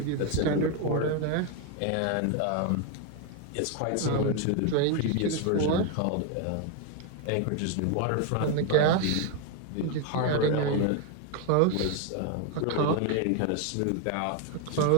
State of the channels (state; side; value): different; both; correlation 0.01